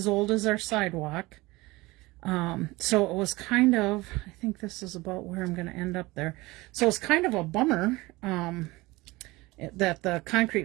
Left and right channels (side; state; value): left; quieter; 21.3 dB